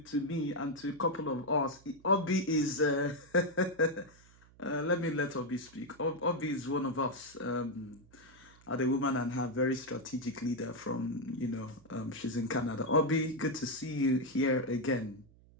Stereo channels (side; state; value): right; noise; hum, 26 dB below the sound